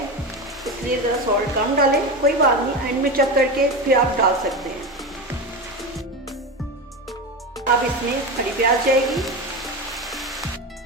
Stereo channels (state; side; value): normal; both; correlation 0.21